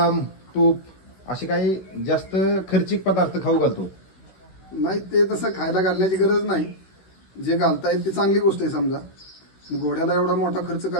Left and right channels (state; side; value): late; right; 16 ms